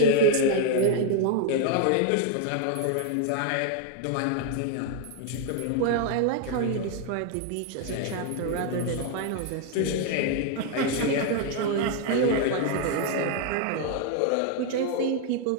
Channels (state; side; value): different; both; correlation 0.01